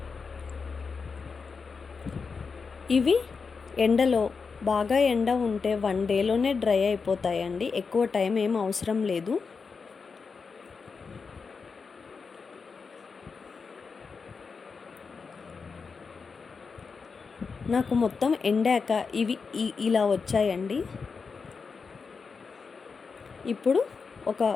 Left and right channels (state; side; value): quieter; right; 5.1 dB